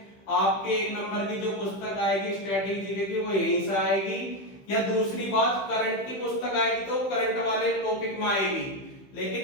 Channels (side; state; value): right; late; 15 ms